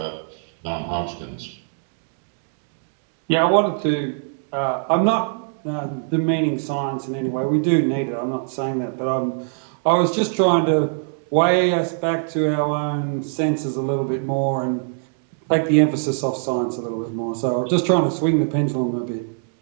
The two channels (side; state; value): left; silent; digital silence